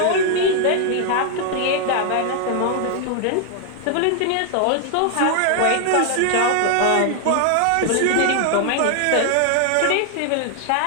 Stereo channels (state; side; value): different; both; correlation 0.00